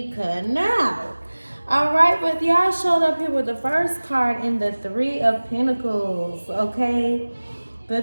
cutting out. Alright, but y'all showed up here with the first card in the Three of Pentacles, okay? The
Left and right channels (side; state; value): both; inverted; correlation -1.00